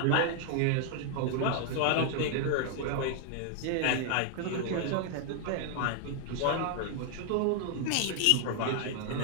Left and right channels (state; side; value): different; both; correlation 0.00